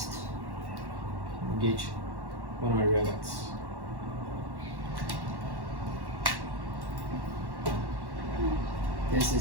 Engage one of my rear guards. This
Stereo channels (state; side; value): late; left; 1.1 ms